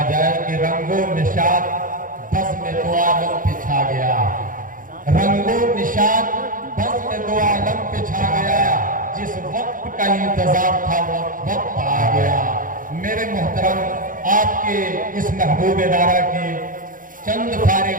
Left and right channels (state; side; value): late; left; 0.39 ms